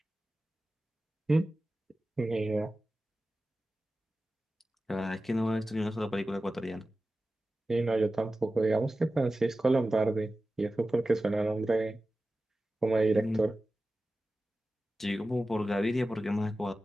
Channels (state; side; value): normal; both; correlation 0.95